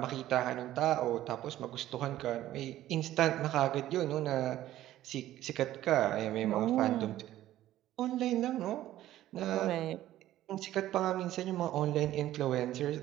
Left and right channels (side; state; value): left; quieter; 13.8 dB